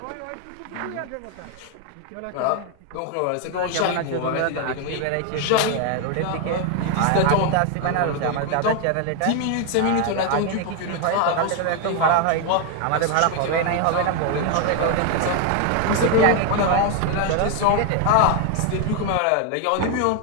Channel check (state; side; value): different; both; correlation 0.01